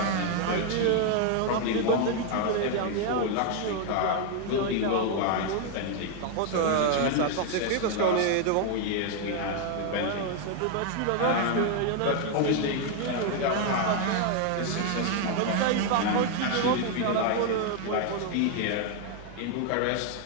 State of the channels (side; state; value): both; different; correlation 0.01